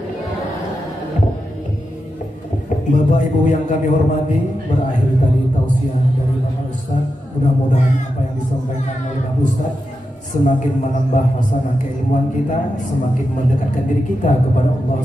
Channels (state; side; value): normal; both; correlation 0.88